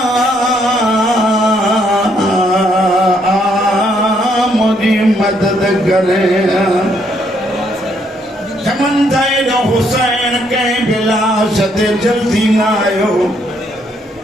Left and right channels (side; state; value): both; normal; correlation 0.71